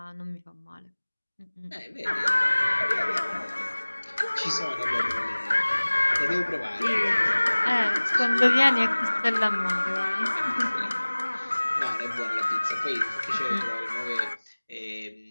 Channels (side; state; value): both; inverted; correlation -1.00